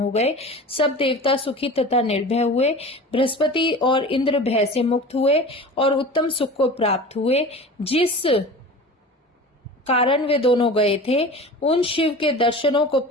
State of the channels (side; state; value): both; normal; correlation 0.36